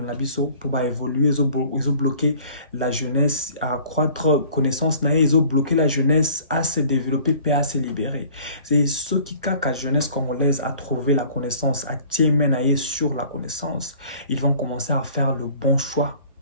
pour évoluer, ils ont bloqué la jeunesse à accroître connaissance, ils ont bloqué la jeunesse à se développer et à se libérer. C'est ce qui a la jeunesse congolaise à trouver la connaissance, à tirer sur la connaissance. Ils vont commencer à faire le bon choix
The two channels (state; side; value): inverted; both; correlation -0.51